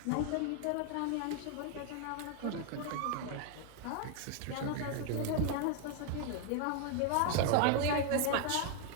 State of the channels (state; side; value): different; both; correlation 0.00